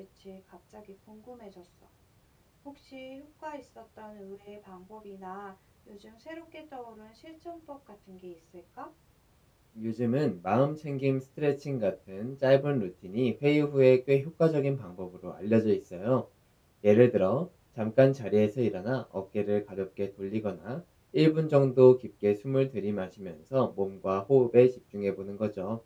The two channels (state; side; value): identical; both; correlation 1.00